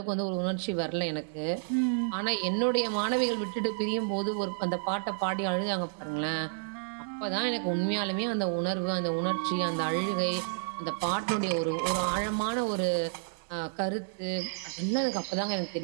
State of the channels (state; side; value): silent; left; digital silence